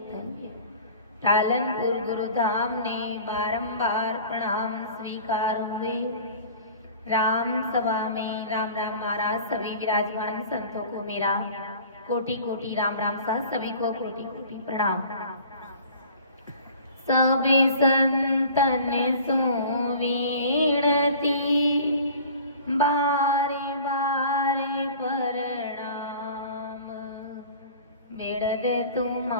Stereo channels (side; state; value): both; inverted; correlation -0.44